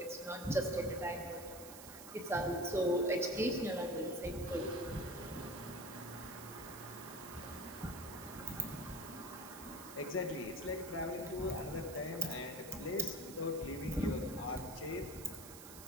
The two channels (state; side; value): noise; right; hiss, 13 dB below the sound